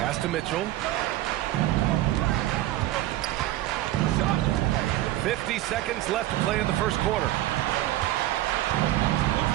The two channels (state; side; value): quieter; left; 15.1 dB